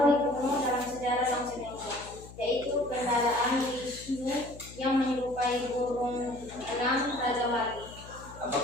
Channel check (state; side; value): noise; left; hum, 17 dB below the sound